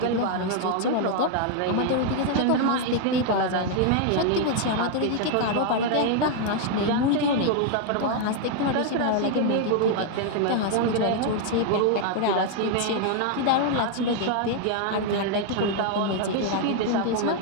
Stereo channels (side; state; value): both; different; correlation 0.00